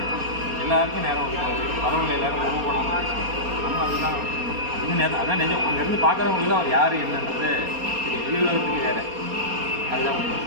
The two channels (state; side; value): late; left; 4.2 ms